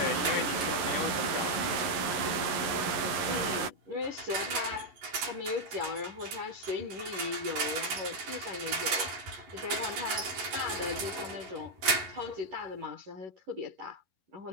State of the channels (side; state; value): left; late; 11 ms